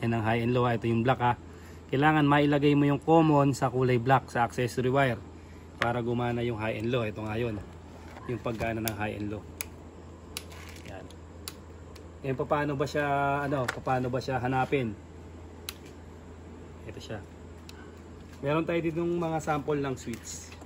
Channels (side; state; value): both; identical; correlation 1.00